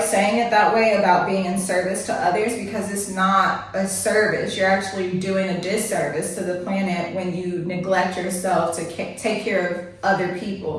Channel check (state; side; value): identical; both; correlation 1.00